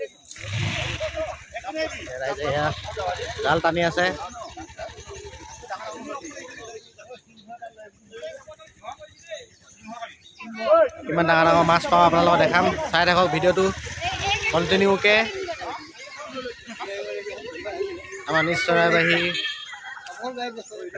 ৰাইজে এয়া জাল টানি আছে। কিমান ডাঙৰ ডাঙৰ মাছ পাওঁ আপোনালোকক দেখাম, চাই থাকক ভিডিঅ'টো কণ্টিনিউকৈ। আমাৰ নিজ চৰাইবাহী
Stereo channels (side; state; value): both; identical; correlation 1.00